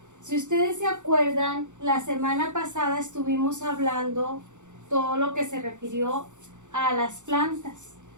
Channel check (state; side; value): late; left; 0.85 ms